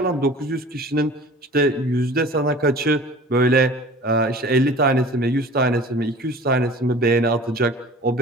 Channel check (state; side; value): normal; both; correlation 0.43